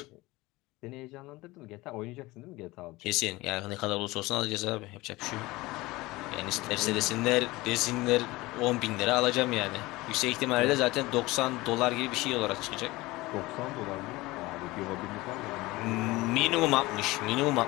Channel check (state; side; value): quieter; right; 20.6 dB